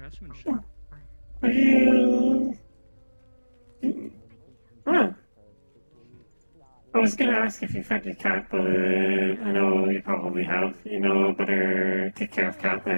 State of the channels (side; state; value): both; inverted; correlation -1.00